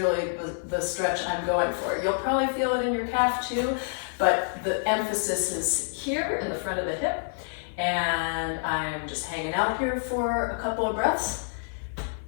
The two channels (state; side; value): silent; right; 55 dB below the other